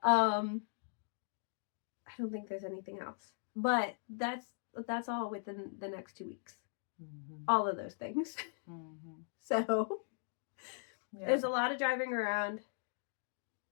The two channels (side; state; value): right; silent; digital silence